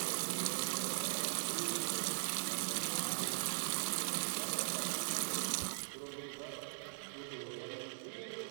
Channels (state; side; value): silent; left; 51 dB below the other